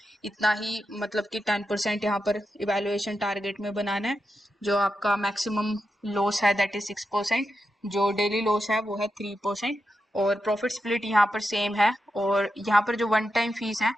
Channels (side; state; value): both; normal; correlation 0.88